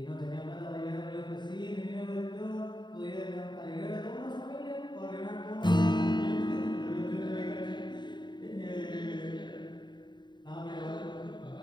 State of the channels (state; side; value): late; right; 0.22 ms